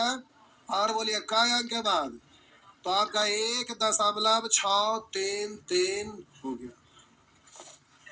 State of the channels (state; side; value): identical; both; correlation 1.00